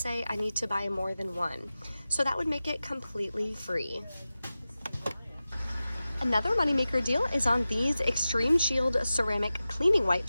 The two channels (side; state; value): both; inverted; correlation -0.95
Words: I need to buy more than one. So that would make it completely free. Another moneymaker deal is on these Extreme Shield ceramic cleaning